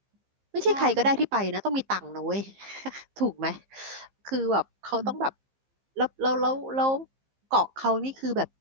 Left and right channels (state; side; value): late; left; 15 ms